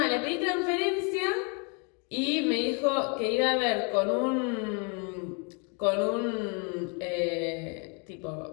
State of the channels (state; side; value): quieter; right; 35.0 dB